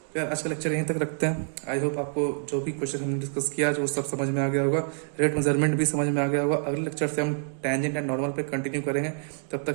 तो यार आज का लेक्चर यहीं तक रखते हैं। आई होप आपको जो भी क्वेश्चन हमने डिस्कस किया आज वो सब समझ में आ गया होगा, रेट मेजरमेंट भी समझ में आ गया होगा। अगले लेक्चर से हम टेंजेंट एंड नॉर्मल पे कंटिन्यू करेंगे। तब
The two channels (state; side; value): silent; left; digital silence